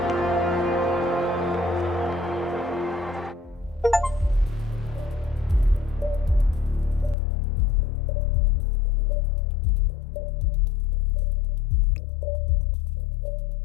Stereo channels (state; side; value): drops out; right; at 7.2 s